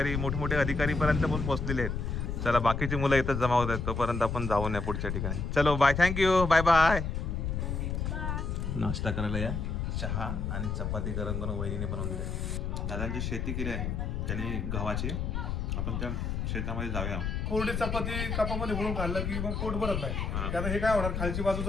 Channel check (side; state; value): left; noise; rumble, 2 dB below the sound